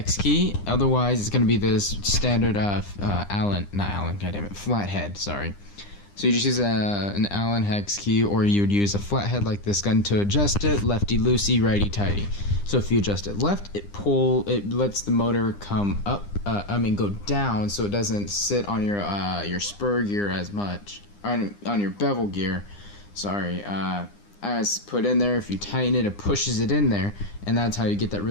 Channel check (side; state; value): right; late; 9.9 ms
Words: key. Otherwise, it's going to be this standard flathead, sorry. So you just use an Allen hex key, or you would use a flathead like this gun to adjust it, lefty loosey, righty tighty. So if you adjust it left, it lets the motor come up, go down, so it doesn't sit on your spur gear as much, on your bevel gear, sorry, as put in there. If you tighten it, it pushes it in there, and that's how you get that